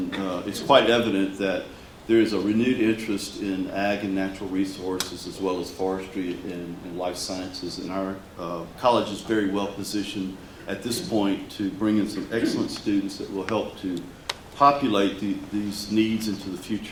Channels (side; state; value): both; identical; correlation 1.00